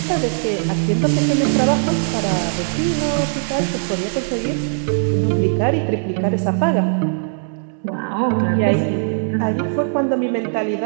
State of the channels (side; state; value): left; silent; 61 dB below the other